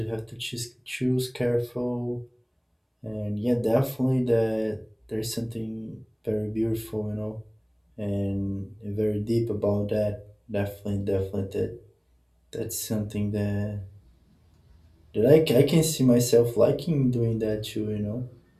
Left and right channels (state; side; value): identical; both; correlation 1.00